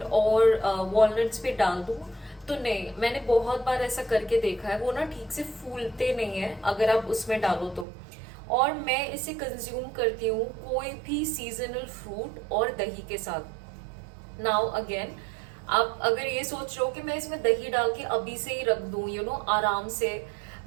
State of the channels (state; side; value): drops out; left; at 7.9 s